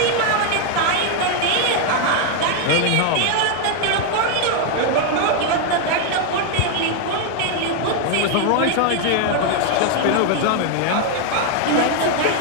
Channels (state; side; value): different; both; correlation 0.01